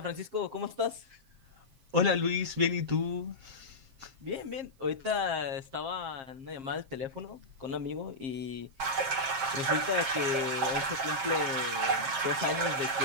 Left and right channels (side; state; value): left; late; 7.4 ms